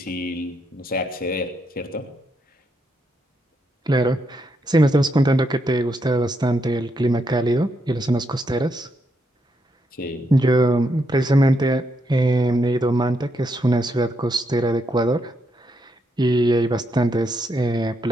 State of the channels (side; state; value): both; normal; correlation 0.79